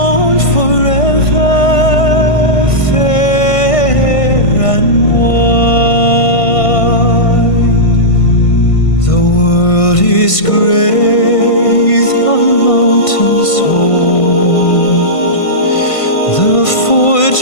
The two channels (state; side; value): late; right; 1.5 ms